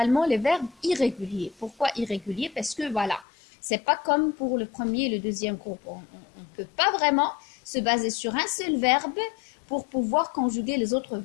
les verbes irréguliers. Pourquoi irréguliers? Parce que voilà, c'est pas comme pour le premier et le deuxième groupe. On ne peut pas vraiment se baser sur un seul verbe pour pouvoir conjuguer les autres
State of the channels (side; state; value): right; drops out; at 3.2 s